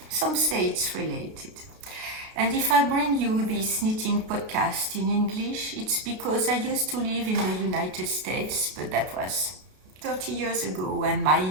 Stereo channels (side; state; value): left; late; 32 ms